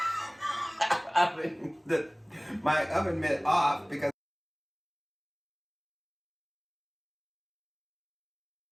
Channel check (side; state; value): both; identical; correlation 1.00